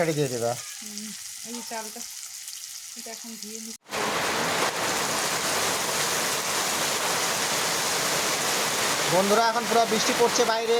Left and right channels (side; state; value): both; identical; correlation 1.00